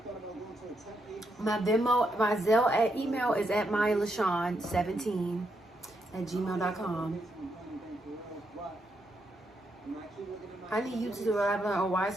My Venmo, my Zelle email is at Myialashaun17@gmail.com. I need you to elaborate on why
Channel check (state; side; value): normal; both; correlation 0.80